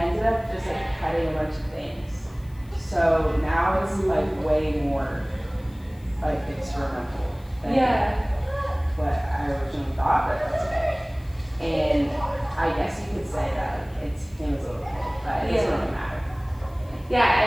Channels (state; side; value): noise; left; hiss, 28 dB below the sound